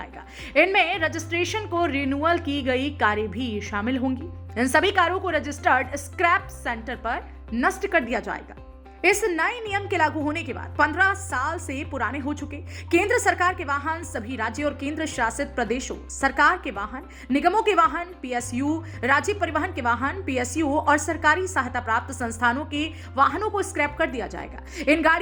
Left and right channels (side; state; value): both; identical; correlation 1.00